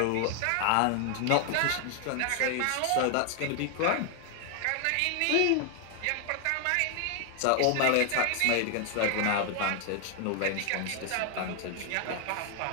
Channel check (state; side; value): different; both; correlation 0.00